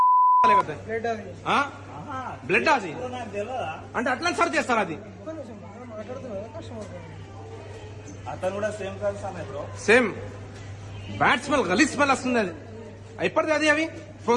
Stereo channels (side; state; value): both; identical; correlation 1.00